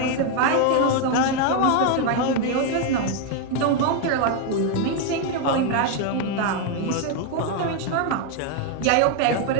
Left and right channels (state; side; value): different; both; correlation 0.01